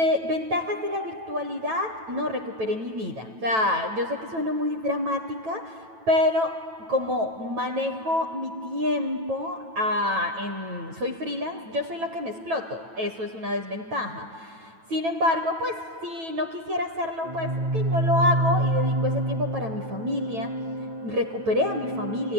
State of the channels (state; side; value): late; left; 9.1 ms